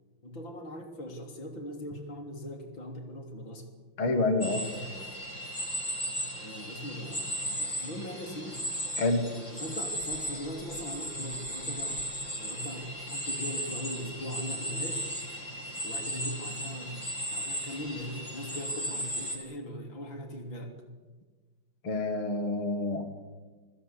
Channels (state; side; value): late; right; 5.8 ms